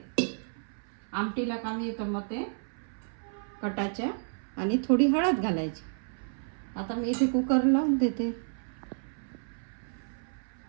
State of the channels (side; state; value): left; silent; 57 dB below the other